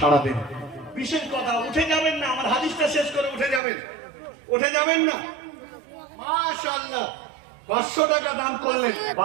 দেন। বিশেষ কথা, উঠে যাবেন না, আমার হাদিসটা শেষ করে উঠে যাবেন না। মাশাআল্লাহ, 500 টাকা দান করলেন,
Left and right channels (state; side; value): drops out; left; at 3.6 s